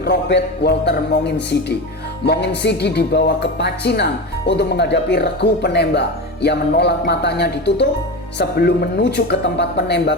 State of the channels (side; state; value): both; normal; correlation 0.24